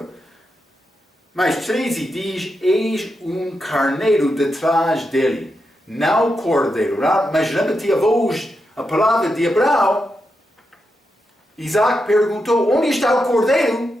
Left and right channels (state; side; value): normal; both; correlation 0.86